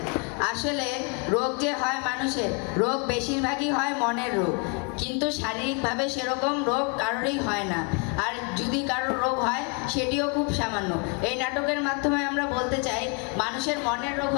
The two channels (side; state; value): right; quieter; 33.4 dB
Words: আসলে রোগ যে হয় মানুষের, রোগ বেশিরভাগই হয় মনের রোগ, কিন্তু শারীরিকভাবে সেরকম রোগ কারোরই হয় না। আর যদি কারোর রোগ হয় সেটিও খুব সামান্য। এই নাটকের মাধ্যমে আমরা বলতে চাই মানুষের মনের রোগ